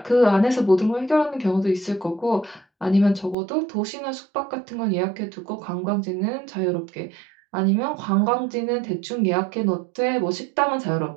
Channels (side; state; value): left; drops out; at 3.4 s